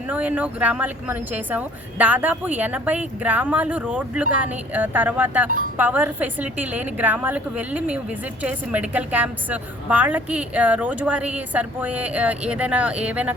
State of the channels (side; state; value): both; normal; correlation 0.55